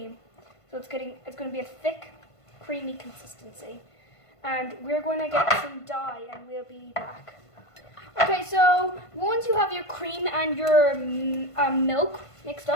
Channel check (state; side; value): late; right; 1.5 ms